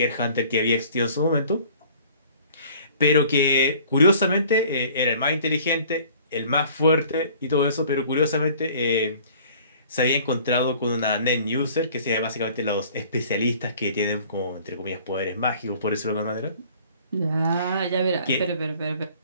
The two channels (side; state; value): both; inverted; correlation -0.51